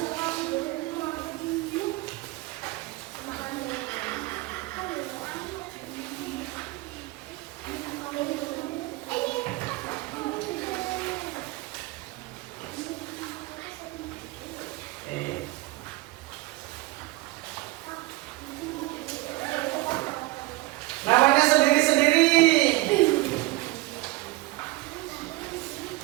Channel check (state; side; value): quieter; left; 20.5 dB